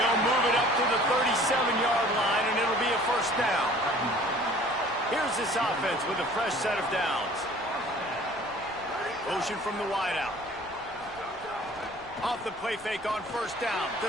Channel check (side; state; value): left; noise; rumble, 24 dB below the sound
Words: move it up to the 37-yard line, and it'll be a first down. Here's this offense with a fresh set of downs. Motion from the wideout. Off the play fake on first down